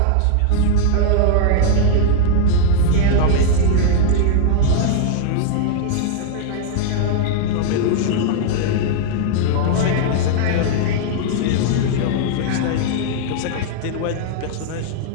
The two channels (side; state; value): both; different; correlation -0.01